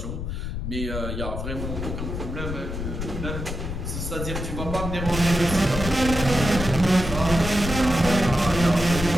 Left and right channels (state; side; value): noise; left; rumble, 5 dB below the sound